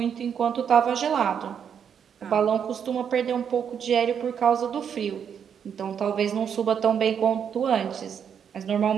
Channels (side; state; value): left; quieter; 7.8 dB